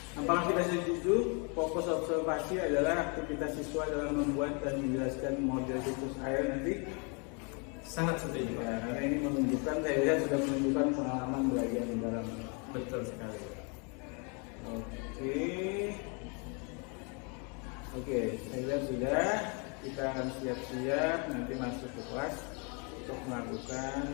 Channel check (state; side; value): quieter; right; 34.8 dB